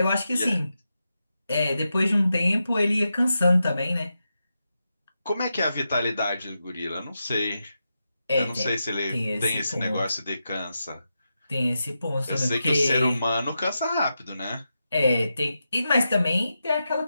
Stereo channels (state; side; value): inverted; both; correlation -0.88